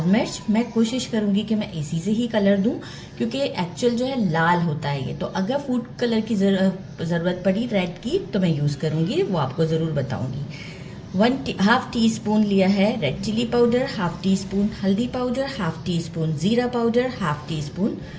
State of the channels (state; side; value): identical; both; correlation 1.00